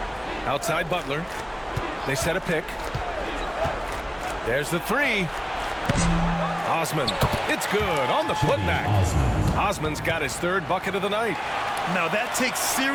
Outside Butler. They set a pick. There's the three. Osman. It's good on the putback. Osman's got his 3rd bucket of the night. Now that takes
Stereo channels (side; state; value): both; identical; correlation 1.00